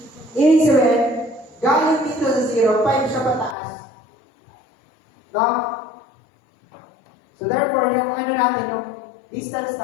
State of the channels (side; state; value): right; drops out; at 3.6 s